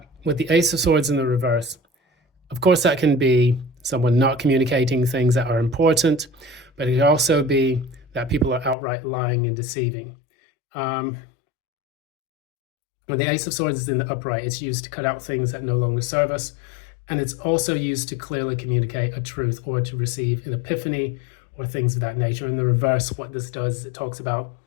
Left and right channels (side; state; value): right; drops out; at 8.8 s